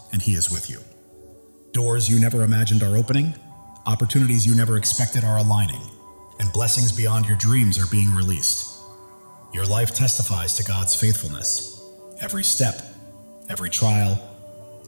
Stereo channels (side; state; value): both; inverted; correlation -1.00